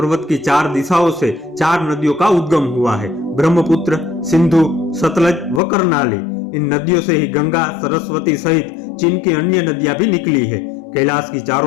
की 4 दिशाओं से 4 नदियों का उद्गम हुआ है, ब्रह्मपुत्र, सिंधु, सतलज व कर्णाली। इन नदियों से ही गंगा, सरस्वती सहित चीन की अन्य नदियां भी निकली है। कैलाश की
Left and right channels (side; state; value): right; drops out; at 5.6 s